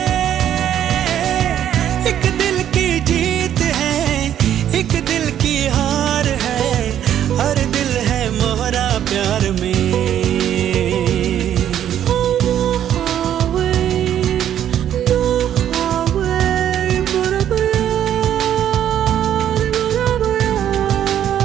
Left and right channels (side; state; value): left; quieter; 10.5 dB